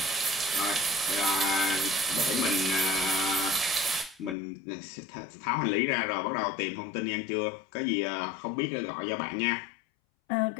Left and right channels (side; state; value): right; drops out; at 4.4 s